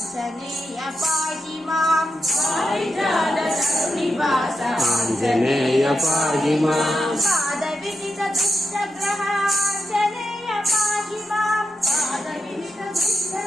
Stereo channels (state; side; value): normal; both; correlation 0.87